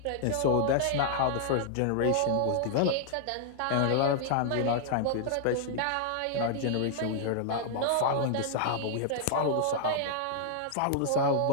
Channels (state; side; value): different; both; correlation -0.01